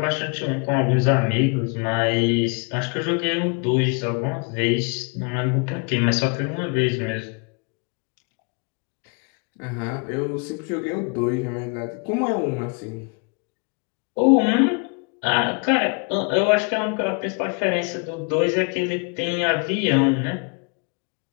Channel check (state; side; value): quieter; right; 33.6 dB